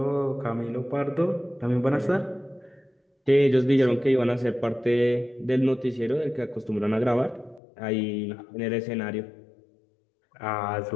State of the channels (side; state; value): right; drops out; at 7.6 s